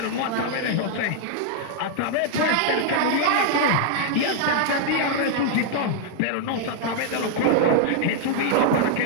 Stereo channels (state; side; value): different; both; correlation 0.00